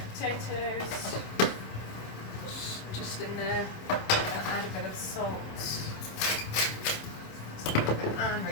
potatoes just in there. I'll add a bit of salt. And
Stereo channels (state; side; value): late; right; 27 ms